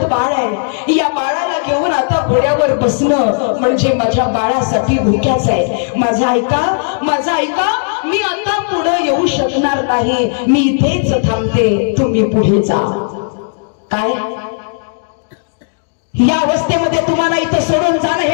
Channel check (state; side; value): silent; right; digital silence